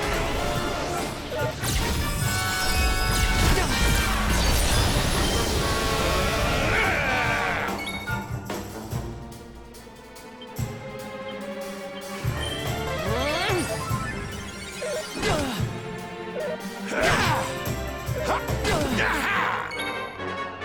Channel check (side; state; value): both; identical; correlation 1.00